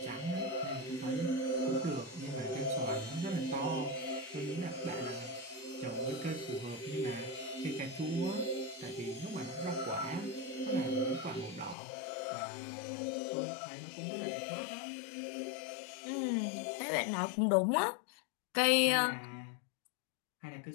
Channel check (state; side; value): drops out; right; at 11.8 s